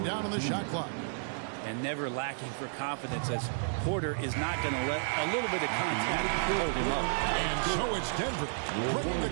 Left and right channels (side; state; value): left; silent; digital silence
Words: down on the shot clock. And never lacking for confidence, as Porter is not going to let a little bit of contact hold him up. And so it's Denver bringing the